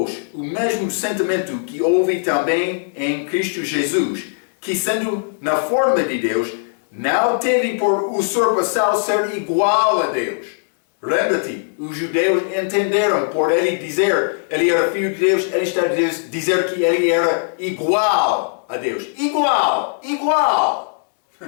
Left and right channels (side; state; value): right; silent; digital silence